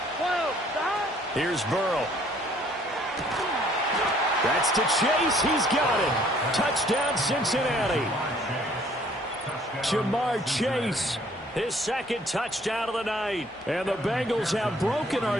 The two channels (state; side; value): normal; both; correlation 0.60